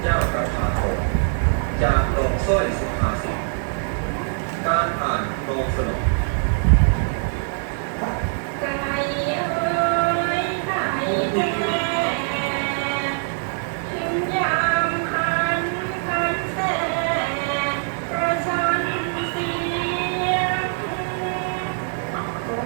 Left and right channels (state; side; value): silent; left; 63 dB below the other